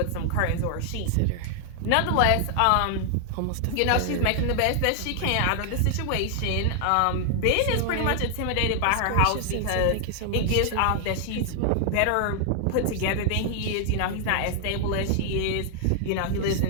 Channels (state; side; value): different; both; correlation 0.00